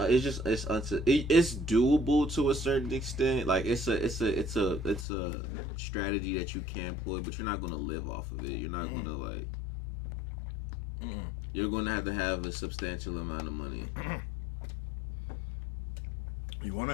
to a certain extent. Like it's a strategy that you can employ, but you're not gonna live off of it. You're not gonna like. You're gonna have a substantial amount of money. You want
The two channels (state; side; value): drops out; right; at 5.1 s